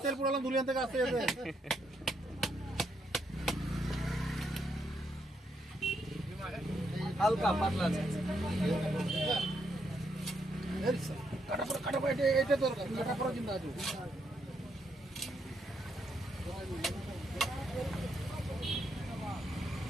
তেল পুরালাম দুলিয়ান থেকে আসতে যেতে। হালকা পাতলা আছে। কাটা পড়া এটা দরকার, কাটা পড়া চিন্তা আছে।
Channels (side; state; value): both; normal; correlation 0.77